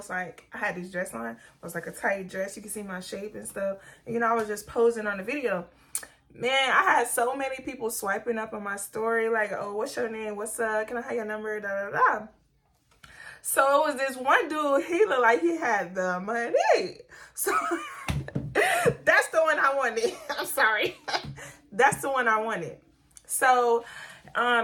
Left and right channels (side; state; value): both; identical; correlation 1.00